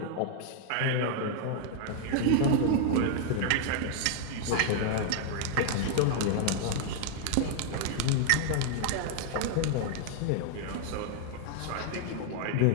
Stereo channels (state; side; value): different; both; correlation 0.00